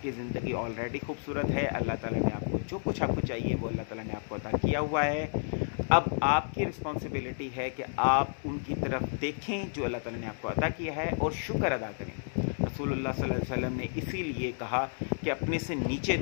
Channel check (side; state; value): right; silent; digital silence